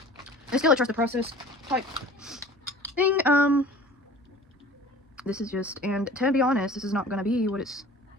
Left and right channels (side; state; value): both; normal; correlation 0.45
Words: It's still a trust the process type thing. This is just, and to be honest, this is not gonna be what it's